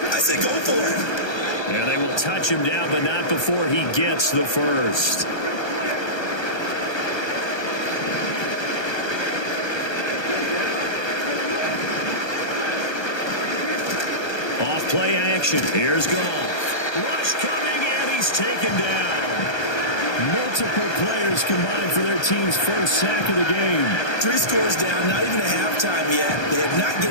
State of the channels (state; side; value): late; right; 1.3 ms